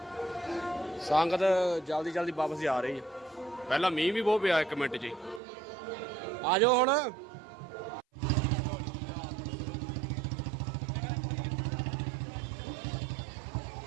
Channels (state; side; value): drops out; left; at 5.4 s